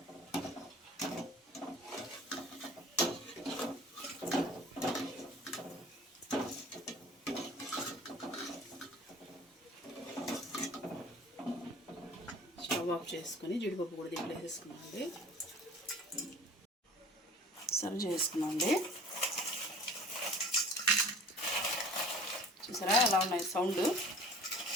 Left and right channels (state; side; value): normal; both; correlation 0.46